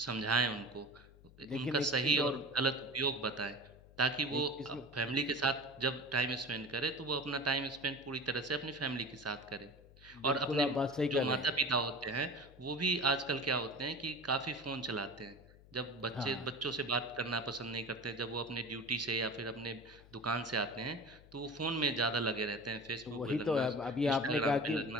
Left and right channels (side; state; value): left; noise; hum, 23 dB below the sound